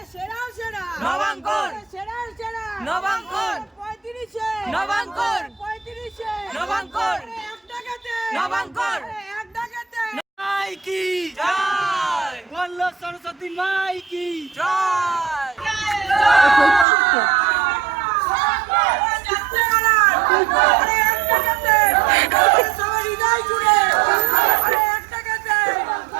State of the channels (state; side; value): drops out; left; at 16.9 s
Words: সেরা সেরা নবাঙ্কর সেরা সেরা নবাঙ্কর 35 নবাঙ্কর 35 নবাঙ্কর এক টাকাতে নবাঙ্কর এক টাকাতে মাইকি জয় বলো সরস্বতী মাইকি জয় যাচ্ছে কারা আরে এক টাকাতে সবার হৃদয় জুড়ে আরে এক টাকাতে